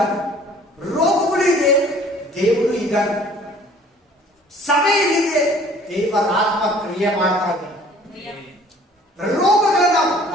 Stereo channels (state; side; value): normal; both; correlation 0.53